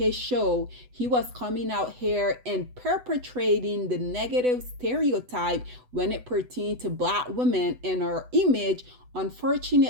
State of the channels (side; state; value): left; late; 8.0 ms